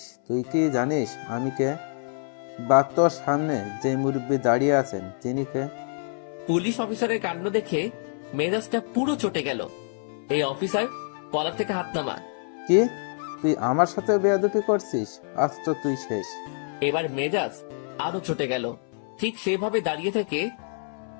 তুই কি জানিস আমি কে? বা তোর সামনে যে মুরব্বী দাঁড়িয়ে আছেন তিনি কে? পুলিশ অফিসারের কাণ্ড দেখে মেজাজটা পুরো চটে গেল। এই অফিসার, কলার থেকে হাত নামা। কি, তুই আমার সাথে বেয়াদবি করছিস? আজ তো তুই শেষ। এবার মেজাজ আরো চটে গেল। ঠিক সেভাবে দাঁড়িয়ে থেকে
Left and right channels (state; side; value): silent; right; 60 dB below the other